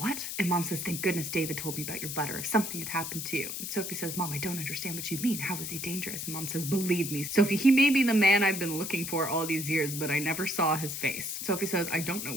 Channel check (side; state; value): left; noise; hiss, 5 dB below the sound